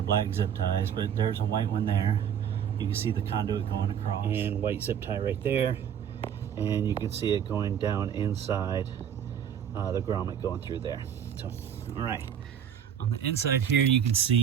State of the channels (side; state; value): left; quieter; 8.7 dB